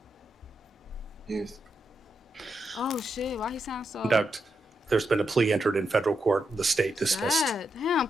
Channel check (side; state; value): both; normal; correlation 0.84